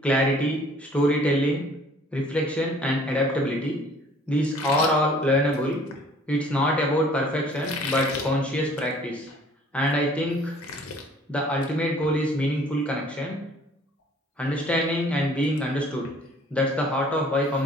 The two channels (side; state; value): both; normal; correlation 0.55